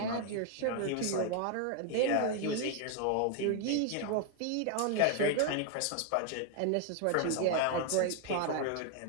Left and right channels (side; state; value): both; different; correlation 0.00